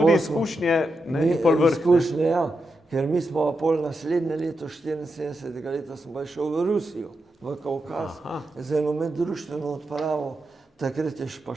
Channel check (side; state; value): both; normal; correlation 0.87